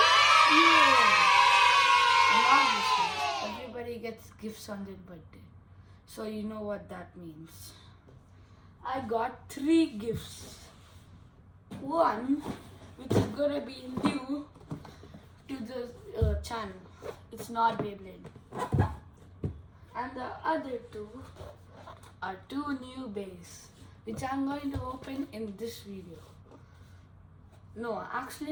And obviously everybody gets gifts on their birthday. So you know what that means. I got 3 gifts. One which is gonna be new to the channel. It's not Beyblade. And the other two are 2 new bays, which I'm going to open in this video. No,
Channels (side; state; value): both; identical; correlation 1.00